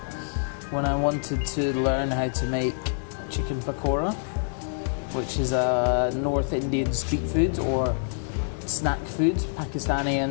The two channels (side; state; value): right; silent; 61 dB below the other